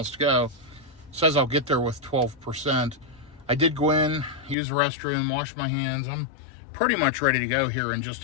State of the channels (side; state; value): right; drops out; at 4.5 s